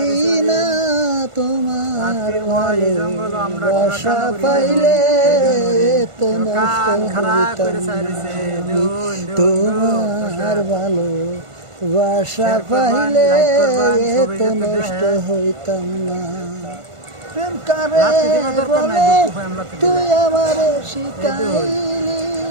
না তোমার ভালোবাসা পাইলে এত নষ্ট হইতাম না। তোমার ভালোবাসা পাইলে এত নষ্ট হইতাম না। প্রেম কারে বলে তুই আমারে শিখাইলি,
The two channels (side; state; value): left; late; 1.5 ms